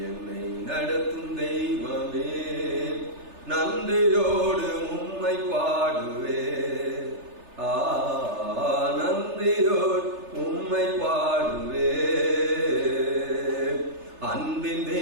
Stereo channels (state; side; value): late; left; 3.3 ms